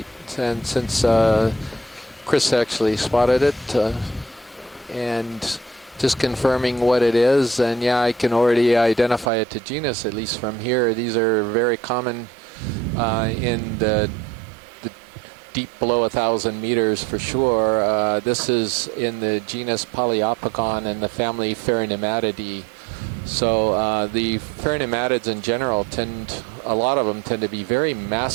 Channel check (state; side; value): drops out; left; at 9.3 s